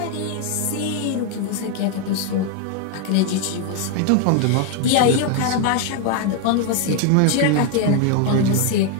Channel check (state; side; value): different; both; correlation 0.01